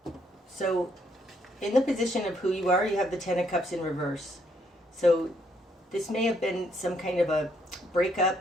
So, in the position of who you are, you have the Ten of Cups in reverse. So, this may have been some kind of a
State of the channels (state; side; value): normal; both; correlation 0.72